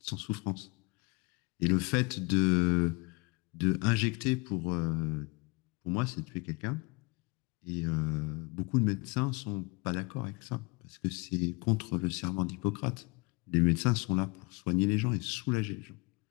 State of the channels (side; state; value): right; quieter; 26.8 dB